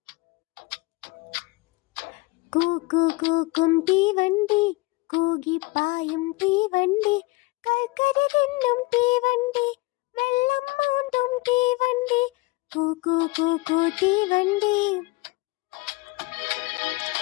കൂക്കും തീവണ്ടി, കൂകിപ്പായും തീവണ്ടി, കൽക്കരി തിന്നും തീവണ്ടി, വെള്ളം മൂന്നും തീവണ്ടി, കൂക്കു തീവണ്ടി.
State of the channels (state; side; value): quieter; right; 23.4 dB